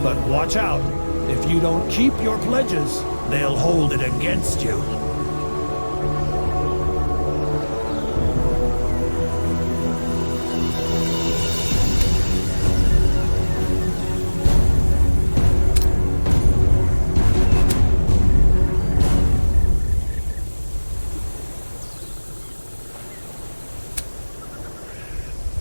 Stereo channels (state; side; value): inverted; both; correlation -1.00